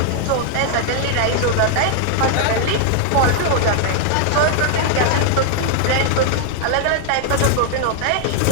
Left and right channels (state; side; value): different; both; correlation 0.00